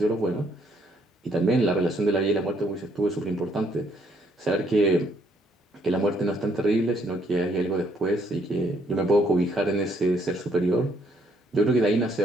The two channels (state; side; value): normal; both; correlation 0.69